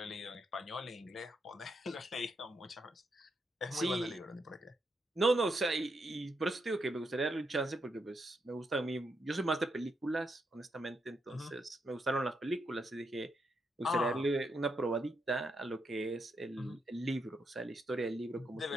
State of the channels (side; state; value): both; normal; correlation 0.81